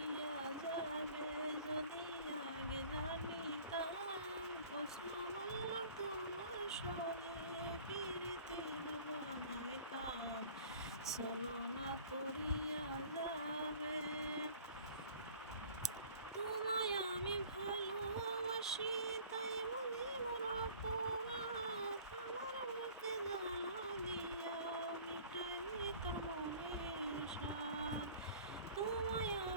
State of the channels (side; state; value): both; inverted; correlation -0.47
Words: যাবে যদি আগে জানিতাম, কসম আল্লাহ তোমার শোনে পিরিতির বানাইতাম। ছলনা করিয়া যাবে তোমায় আমি ভালোবাসি, তাই বুঝি মোর অপরাধ। আমার বুকে জ্বালা দিয়া মিটাইনি তোর মনের সাধ। তোমায়